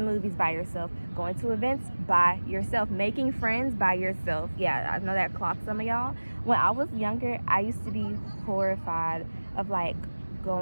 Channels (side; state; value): both; inverted; correlation -1.00